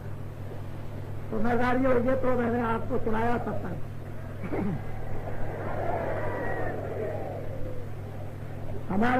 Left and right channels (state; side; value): identical; both; correlation 1.00